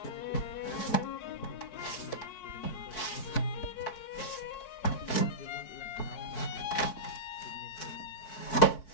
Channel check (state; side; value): late; right; 4.6 ms